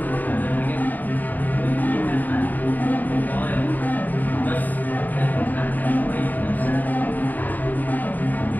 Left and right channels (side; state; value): right; late; 0.084 ms